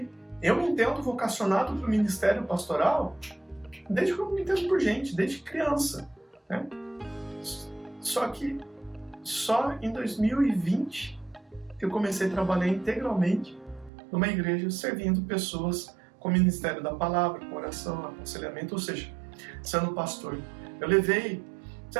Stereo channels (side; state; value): left; drops out; at 13.9 s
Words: eu me entendo vocacionado para o ministério pastoral desde que eu me entendo por gente, desde criança, né? Só que só em 2020 que eu comecei a trabalhar integralmente numa igreja servindo pessoas com o ministério da palavra, com oração, aconselhamento, ou seja, sendo pastor. Eu levei,